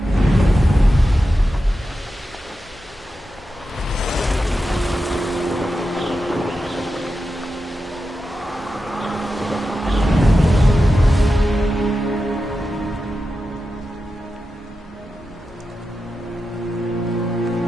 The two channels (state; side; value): normal; both; correlation 0.91